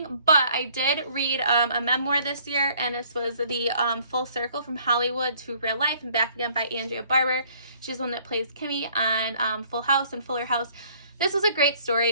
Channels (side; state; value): both; inverted; correlation -0.60